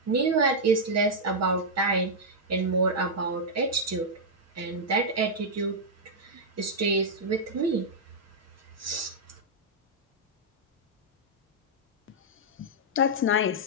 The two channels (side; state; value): both; normal; correlation -0.06